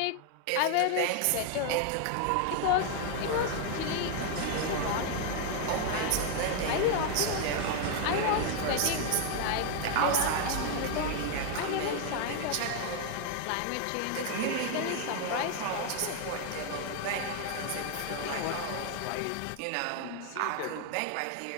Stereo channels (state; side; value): different; both; correlation 0.01